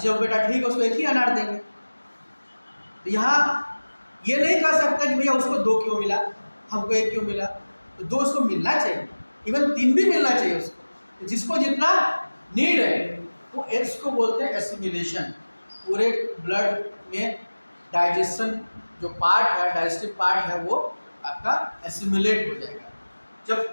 बेटा ठीक है उसको 1 ही अनार देंगे। तो यहाँ ये नहीं कह सकता कि भैया उसको 2 क्यों मिला, हमको 1 क्यों मिला। तो 2 उसको मिलना चाहिए, इवन 3 भी मिलना चाहिए उसको। तो जिसको जितना नीड है वो इसको बोलते हैं एसिमिलेशन। पूरे ब्लड में डाइजेशन जो पार्ट है, डाइजेस्टिव पार्ट है, वो आपका एसिमिलेट हो जाएगा।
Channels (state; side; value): inverted; both; correlation -1.00